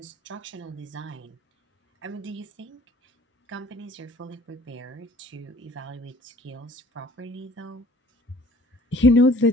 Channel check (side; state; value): both; normal; correlation 0.54